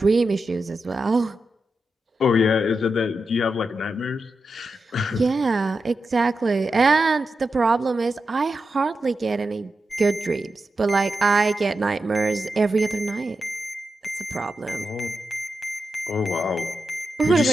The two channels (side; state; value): both; normal; correlation 0.89